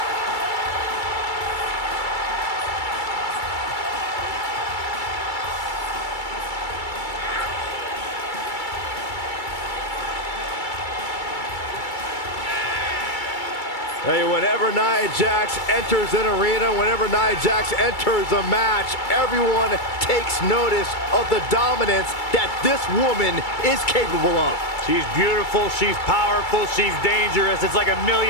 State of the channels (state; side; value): late; right; 2.3 ms